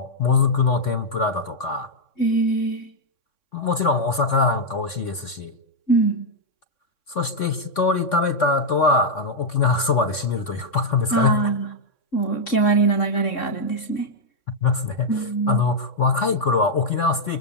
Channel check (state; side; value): late; right; 3.6 ms